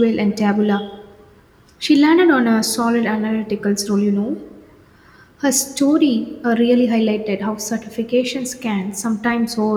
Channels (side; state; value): both; identical; correlation 1.00